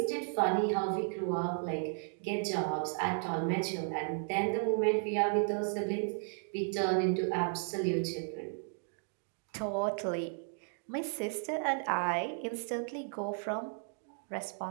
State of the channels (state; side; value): silent; left; 55 dB below the other